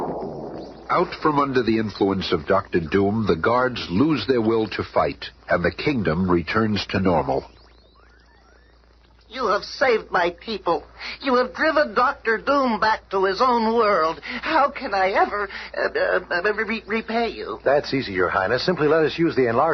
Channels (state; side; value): identical; both; correlation 1.00